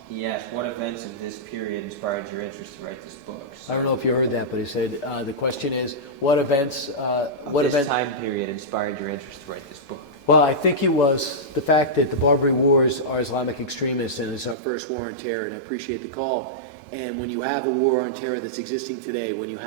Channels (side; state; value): left; drops out; at 14.6 s